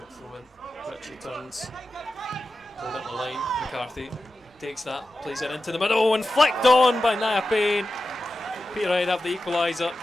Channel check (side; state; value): both; normal; correlation 0.92